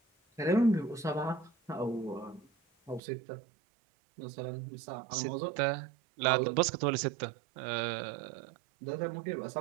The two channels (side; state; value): left; drops out; at 3.0 s